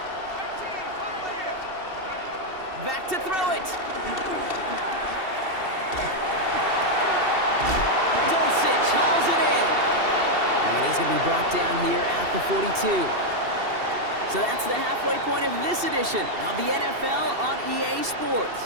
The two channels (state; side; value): late; left; 2.7 ms